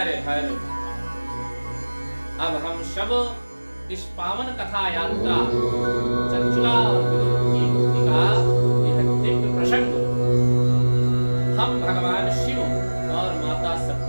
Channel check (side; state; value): both; inverted; correlation -1.00